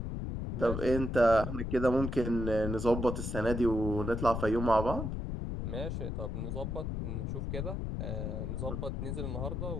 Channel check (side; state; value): left; noise; rumble, 3 dB below the sound